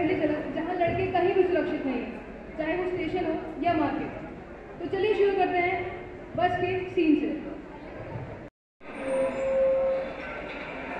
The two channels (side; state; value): both; identical; correlation 1.00